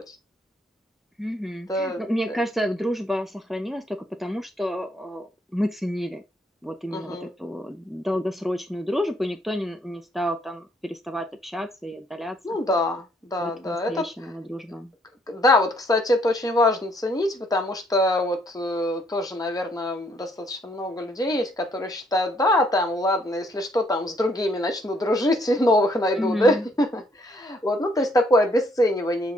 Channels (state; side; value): normal; both; correlation 0.68